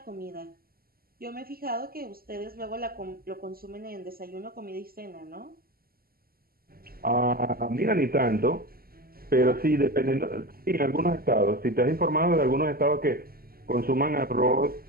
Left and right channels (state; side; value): late; left; 0.43 ms